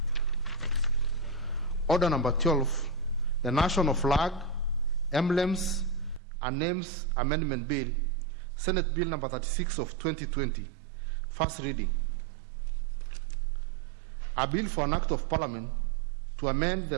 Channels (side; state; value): left; drops out; at 6.2 s